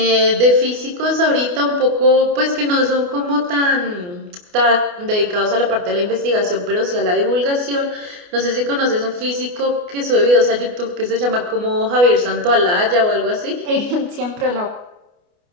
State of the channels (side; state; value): left; late; 28 ms